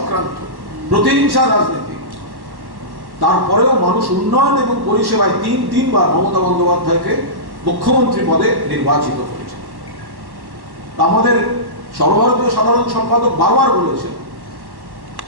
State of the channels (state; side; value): late; left; 1.1 ms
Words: প্রতিহিংসার রাজনীতি, তারপরেও মানুষ উন্নয়ন এবং পরিষেবায় তিনবার মমতা বন্দ্যোপাধ্যায়কে মুখ্যমন্ত্রী পদে নির্বাচিত করেছে। আমাদের সর্বভারতীয় সাধারণ সম্পাদক বারবার বলেছেন